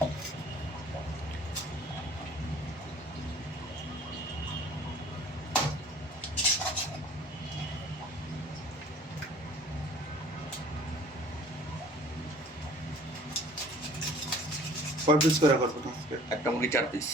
কয় পিস করে করবো আজকে? একটা মুরগি 4 পিস।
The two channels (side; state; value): both; normal; correlation 0.50